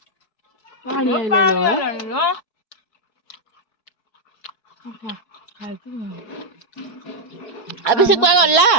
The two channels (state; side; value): late; right; 4.7 ms